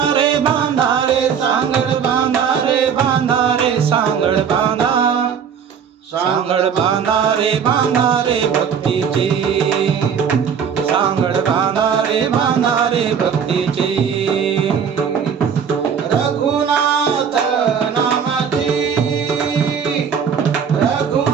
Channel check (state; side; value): quieter; left; 7.3 dB